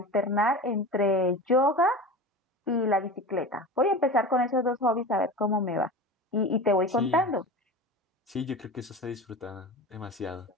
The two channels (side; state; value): both; normal; correlation 0.31